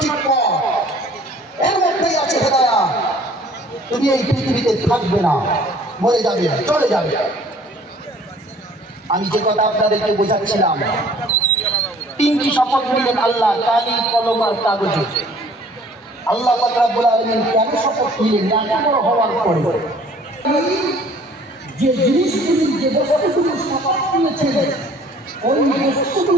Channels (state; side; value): normal; both; correlation 0.54